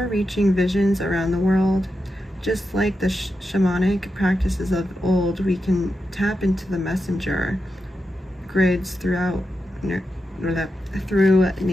visions around the world. Just like the shamanic practices of old, we can tap into the messenger grids throughout nature.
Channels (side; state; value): both; normal; correlation 0.88